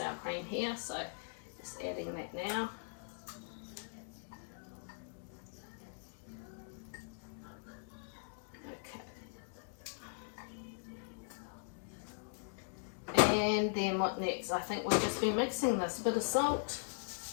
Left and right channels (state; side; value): silent; right; digital silence